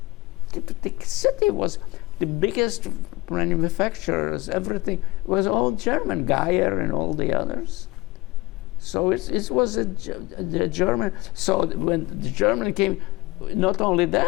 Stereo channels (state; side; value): quieter; right; 20.1 dB